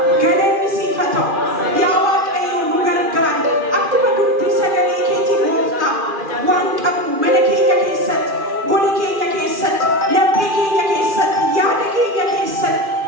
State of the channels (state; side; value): late; left; 2.4 ms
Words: ገለኒ ሲፈተው ያዋቀዮ ኑገርጋሪ አክመ ዱብቲ ሰገሌ ኬቲ ጎፍታ ዋንቀቡ መለኬኛ ኬሰት ጎሊ ኬኛ ኬሰት ለቤ ኬኛ ኬሰት ያደ ኬኛ ኬሰት